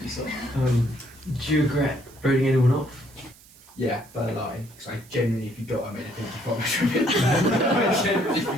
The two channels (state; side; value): noise; right; hiss, 24 dB below the sound